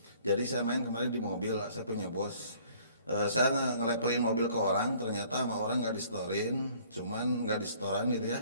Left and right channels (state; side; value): inverted; both; correlation -0.57